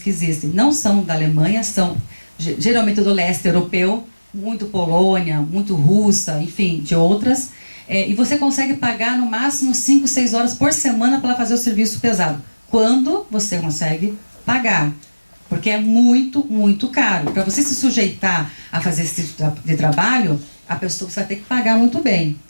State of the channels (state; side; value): inverted; both; correlation -1.00